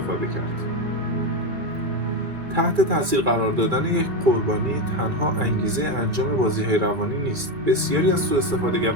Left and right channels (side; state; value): left; late; 2.4 ms